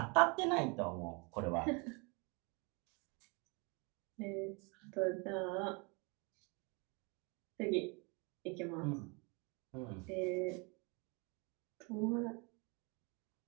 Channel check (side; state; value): left; quieter; 30.9 dB